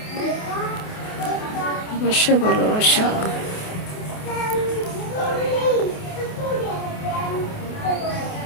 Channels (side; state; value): right; late; 28 ms